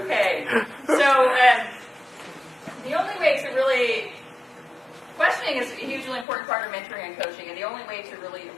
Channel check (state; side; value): drops out; right; at 6.2 s